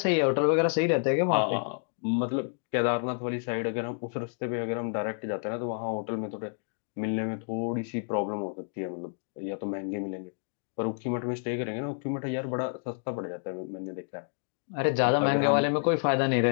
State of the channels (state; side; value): silent; right; digital silence